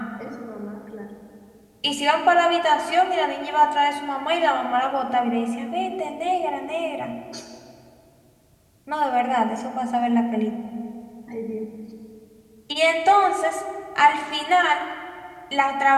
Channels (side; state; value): both; identical; correlation 1.00